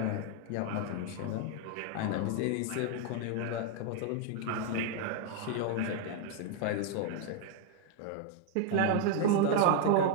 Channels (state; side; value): different; both; correlation 0.01